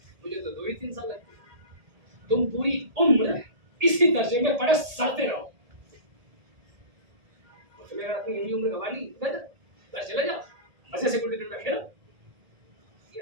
मुझे तो 2 ही 3 साल लगते हैं। तुम पूरी उम्र इसी दर्जे में पढ़े सड़ते रहो। तुम्हें अगर अपनी यही उम्र गंवा ली, घर चले जाओ, मजे से गुल्ली डंडा खेलो।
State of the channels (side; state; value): left; late; 1.7 ms